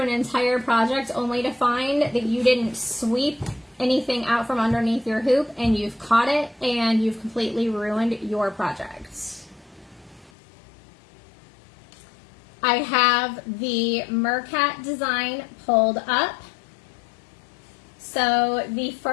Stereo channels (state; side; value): drops out; right; at 10.3 s